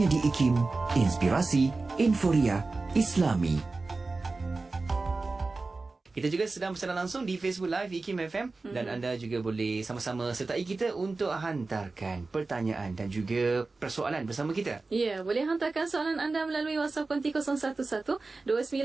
di IKIM Inspirasi Inforia Islami. Kita juga sedang bersiaran langsung di Facebook Live IKIM FM dan anda juga boleh sama-sama sertai kita untuk hantarkan pertanyaan dan juga persoalan bersama kita. Ya, boleh hantarkan soalan anda melalui WhatsApp konti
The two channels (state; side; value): quieter; left; 3.6 dB